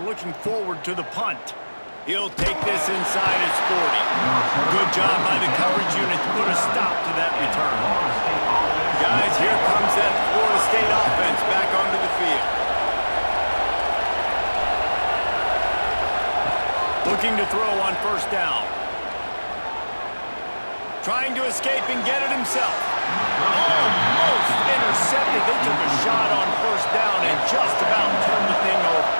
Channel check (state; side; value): inverted; both; correlation -1.00